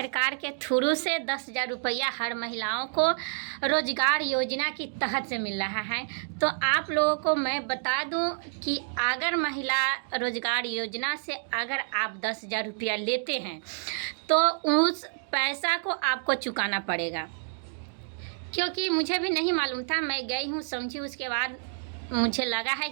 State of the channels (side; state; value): left; silent; digital silence